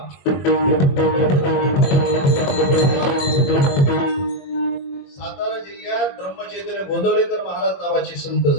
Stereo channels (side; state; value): right; late; 21 ms